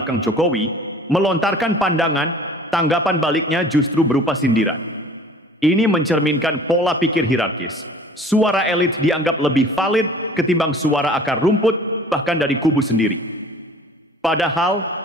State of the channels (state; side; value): normal; both; correlation 0.47